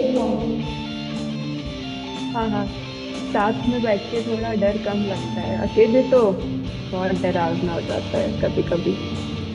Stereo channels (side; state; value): both; identical; correlation 1.00